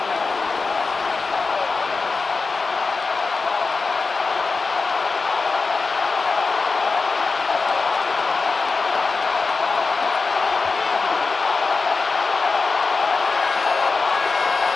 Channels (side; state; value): right; quieter; 4.2 dB